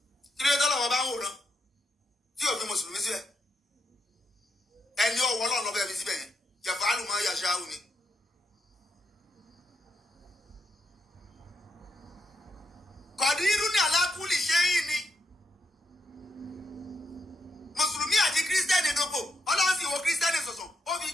kí ló tọ́lọ̀ wọn bá ń wòran tí ò fi mùsùlùmí síbẹ̀ ẹni ọwọ́ Ọlọ́run lọ́fẹ́ fi síbẹ̀ yẹn jẹ̀fọ́ àlùmọ́ yàṣáwù ni. Kọ̀dírú ní alákùlì ṣe yìí ni mùsùlùmí àti kírísítẹ́nì dòpò Ọlọ́run sì wo kírísítẹ́nì sọ̀sọ̀ ó fi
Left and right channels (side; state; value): both; normal; correlation 0.81